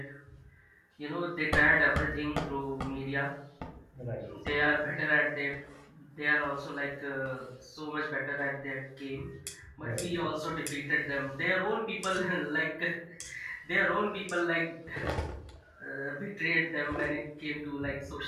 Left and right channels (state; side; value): identical; both; correlation 1.00